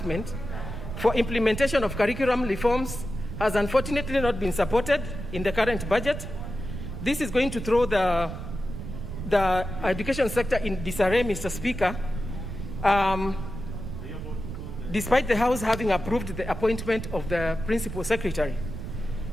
for implementation of curriculum reforms has unfortunately not been supported in the current budget. This is going to throw the the education sector in disarray, Mr. Speaker, despite the House having approved the appointment of the Principal Secretary.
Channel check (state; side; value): noise; right; rumble, 7 dB below the sound